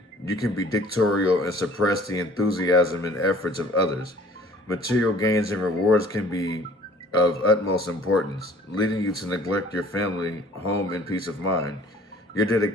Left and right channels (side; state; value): both; normal; correlation 0.52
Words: you can be dictatorial and suppress the enthusiasm and efforts of others. Material gains and rewards can be of utmost importance, leading you to neglect your family, home, and peace of mind. Your